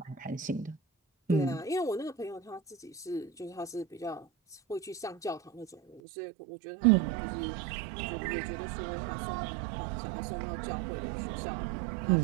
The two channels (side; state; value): left; drops out; at 6.0 s